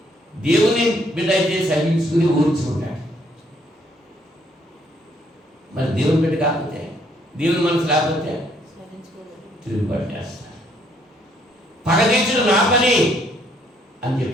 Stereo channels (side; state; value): both; normal; correlation 0.67